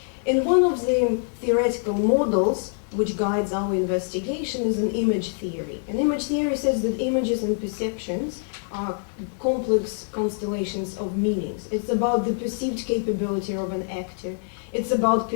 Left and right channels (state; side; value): silent; right; 62 dB below the other